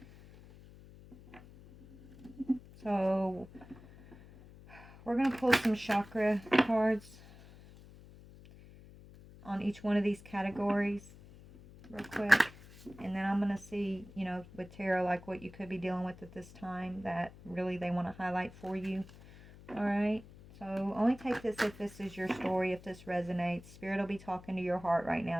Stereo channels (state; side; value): noise; left; hum, 20 dB below the sound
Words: So we're going to pull some chakra cards on each one of these categories real quick. And then I'm going to see, you know, with tarot, like what you could be dealing with at this time that really they want to highlight for you. All right? So only take this if this is your story, if this resonates. Spirit will be talking to your heart right